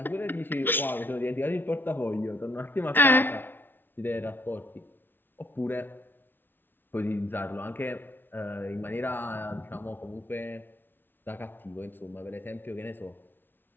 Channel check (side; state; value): right; late; 0.098 ms